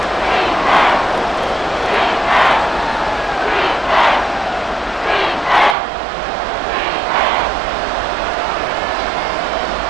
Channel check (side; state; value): left; drops out; at 5.8 s